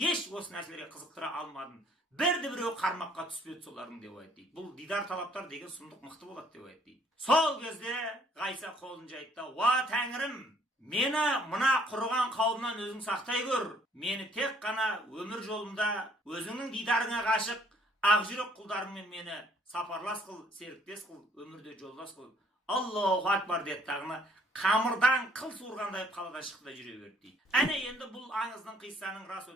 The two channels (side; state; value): both; normal; correlation 0.62